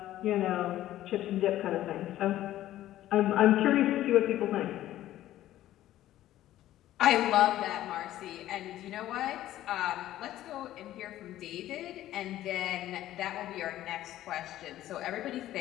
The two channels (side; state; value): right; quieter; 13.8 dB